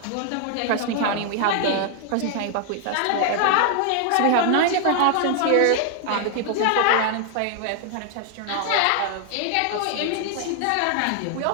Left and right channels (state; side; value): different; both; correlation 0.00